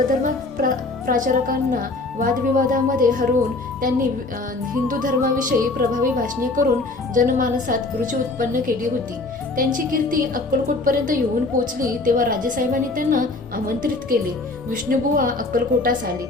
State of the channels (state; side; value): quieter; right; 3.2 dB